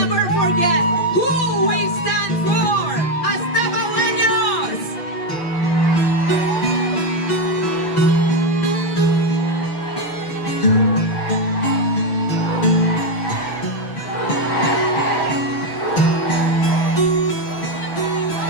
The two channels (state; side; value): late; right; 6.0 ms